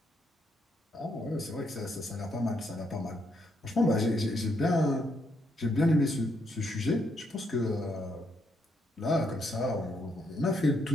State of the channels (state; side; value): normal; both; correlation 0.76